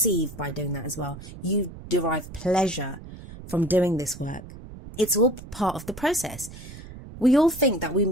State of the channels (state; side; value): noise; right; rumble, 15 dB below the sound